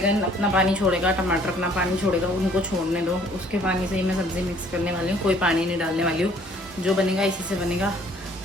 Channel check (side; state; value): both; normal; correlation 0.58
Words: अपना पानी छोड़ेगा, टमाटर अपना पानी छोड़ेगा, उनको छोड़ने दो। उसके पानी से ही मैं सब्ज़ी मिक्स करने वाली हूँ, कोई पानी नहीं डालने वाली हूँ। जो बनेगा इसी से बनेगा।